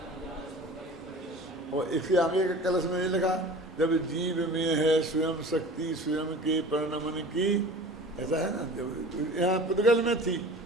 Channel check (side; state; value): both; normal; correlation 0.40